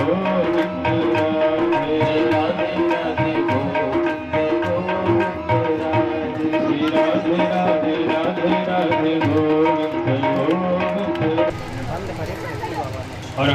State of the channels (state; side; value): identical; both; correlation 1.00